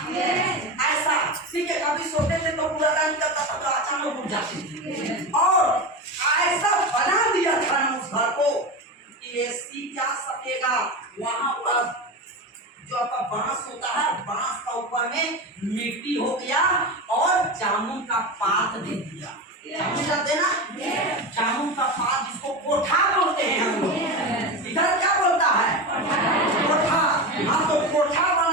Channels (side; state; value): both; normal; correlation 0.22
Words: ऐसा ठीक है। कभी सोते थे तो बुर्दा निकलता था, तो अचानक उठ जाते थे। और ऐसा बना दिया था ना उस घर को कि एसी क्या सकेगा। वहां पर जो आपका बांस होता है, बांस का ऊपर में मिट्टी हो गया और जामुन का पात दे दिया। जानते ना, जामुन का पात जिसको कोठा बोलते हैं हम लोग, इधर क्या बोलता है, कोठा। हाँ, तो कोठा